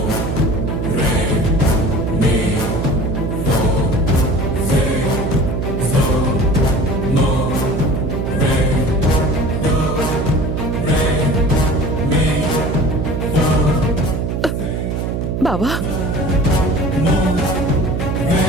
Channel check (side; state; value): right; noise; hum, 1 dB below the sound